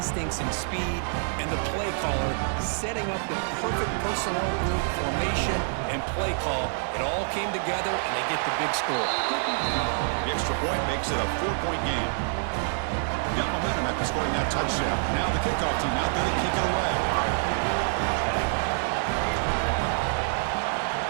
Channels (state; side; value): silent; left; 60 dB below the other